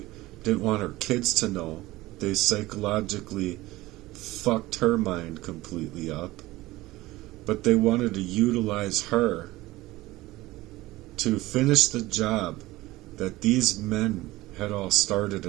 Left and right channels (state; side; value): quieter; left; 18.5 dB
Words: didn't want her kids to know They psychologically fucked her mind completely up. But they wanted to utilize her to finish the job that these men had all started